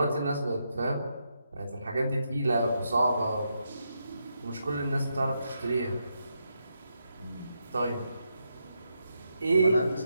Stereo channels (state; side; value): inverted; both; correlation -0.82